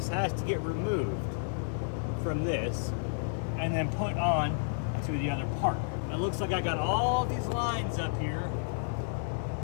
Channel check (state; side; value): silent; right; 57 dB below the other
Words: has to get removed from this and then put on to the other part. It looks like I got all these lines up here